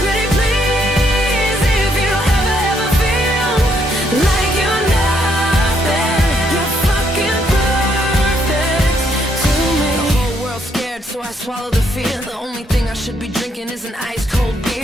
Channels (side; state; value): both; normal; correlation 0.72